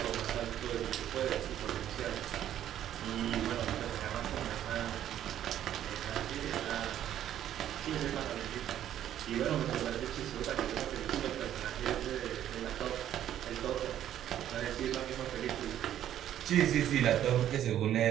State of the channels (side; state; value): left; quieter; 11.2 dB